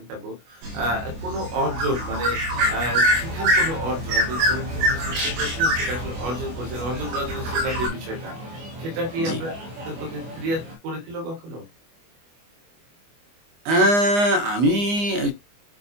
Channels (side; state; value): left; late; 24 ms